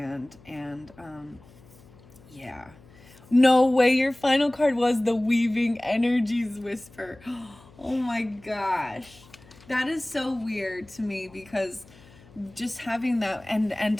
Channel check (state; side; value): noise; left; hum, 24 dB below the sound